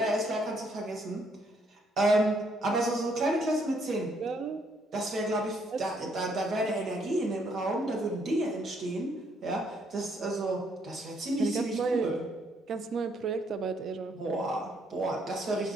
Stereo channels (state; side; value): normal; both; correlation 0.70